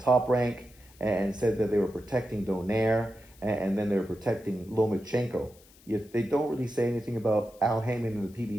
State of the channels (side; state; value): left; noise; hiss, 26 dB below the sound